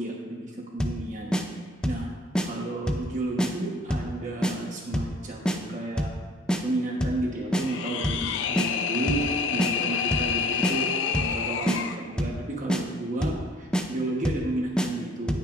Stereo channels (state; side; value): normal; both; correlation 0.56